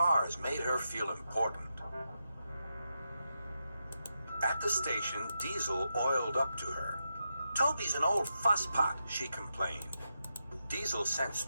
made her feel important. At the station, Diesel oiled up to her. Toby's an old fusspot, she complained. Diesel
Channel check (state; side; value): inverted; both; correlation -0.86